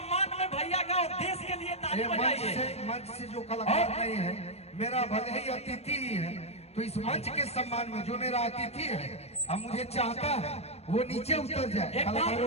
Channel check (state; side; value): late; right; 0.31 ms